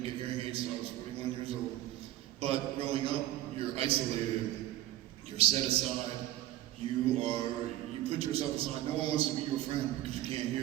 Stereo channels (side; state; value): left; quieter; 14.3 dB